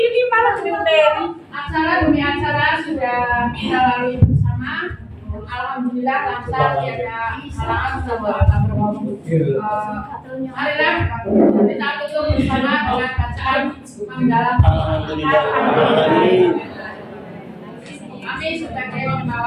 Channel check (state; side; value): identical; both; correlation 1.00